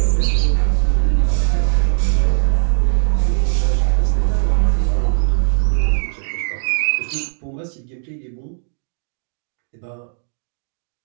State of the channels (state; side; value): silent; left; digital silence